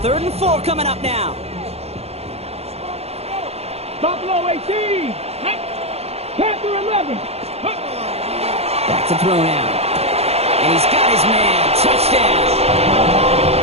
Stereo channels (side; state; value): left; late; 0.30 ms